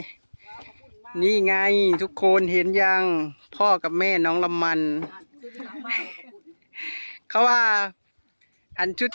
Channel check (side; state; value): both; inverted; correlation -1.00